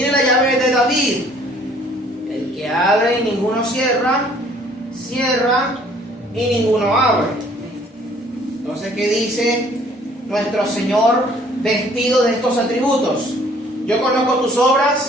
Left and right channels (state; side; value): normal; both; correlation 0.58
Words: la llave de David, el que abre y ninguno cierra, cierra y ninguno abre. Entonces, ¿qué dice nuestro Señor vestido de estos atributos? Yo conozco tus